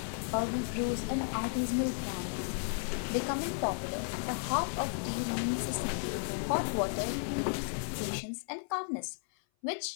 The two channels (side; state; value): right; silent; 55 dB below the other